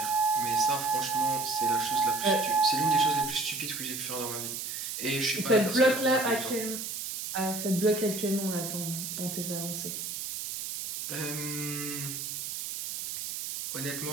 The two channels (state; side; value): noise; right; hiss, 5 dB below the sound